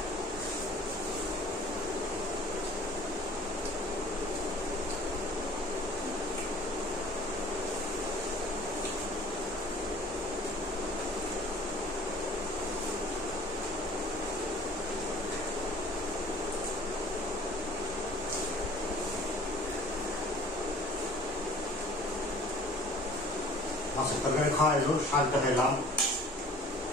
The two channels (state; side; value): normal; both; correlation 0.49